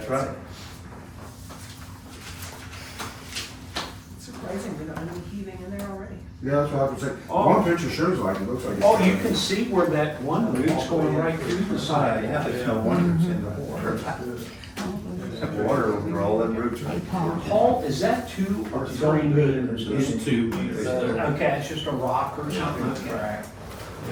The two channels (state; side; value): identical; both; correlation 1.00